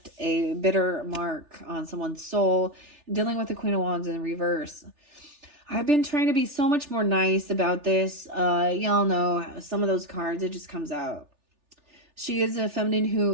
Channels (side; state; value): left; late; 3.3 ms